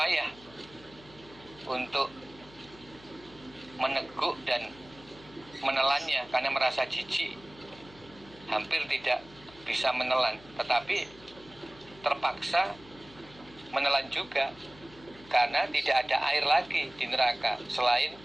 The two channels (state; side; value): noise; left; hum, 22 dB below the sound